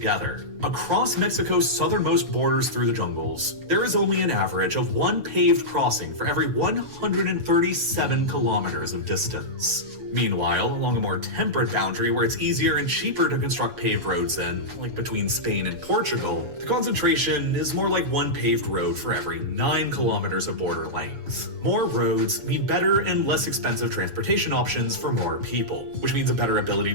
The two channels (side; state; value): left; late; 7.1 ms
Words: Across Mexico's southernmost borders through the jungles, there is only an average of 1 paved crossing for every 137 kilometers of distance. Meanwhile, along a more temperate boundary where it's easier and cheaper to construct paved roads in, like between Spain and Portugal, the concentration is more like 1 paved road for every 9 kilometers of border length. More roads mean better and less expensive transportation options for more people, which means a better ability